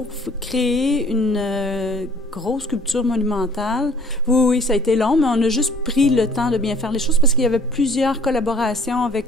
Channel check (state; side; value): normal; both; correlation 0.56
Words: créer une grosse sculpture monumentale. Oui, ça a été long, mais on a juste pris le temps de bien faire les choses parce qu'il y avait plusieurs collaborations